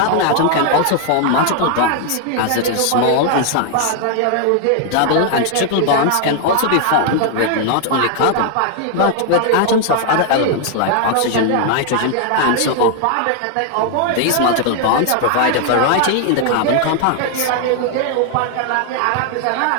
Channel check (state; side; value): different; both; correlation 0.00